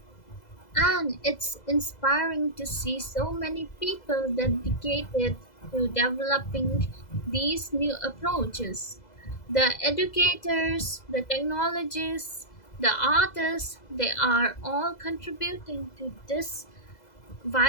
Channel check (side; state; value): right; late; 2.0 ms